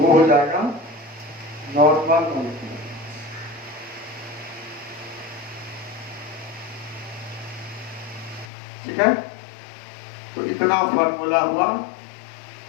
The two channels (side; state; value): right; drops out; at 8.5 s